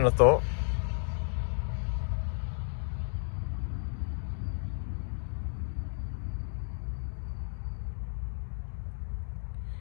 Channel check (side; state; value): right; silent; 56 dB below the other